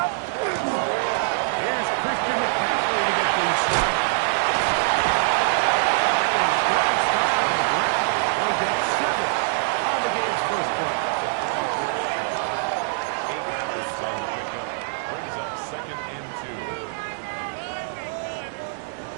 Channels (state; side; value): silent; left; digital silence